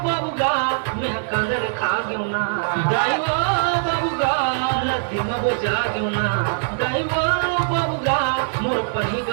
बाबूगा मैं कंदर खा गयो ना दाईवा बाबूगा लगती मब जाग्यो ना दाईवा बाबूगा मोर पढ़ी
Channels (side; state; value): left; silent; digital silence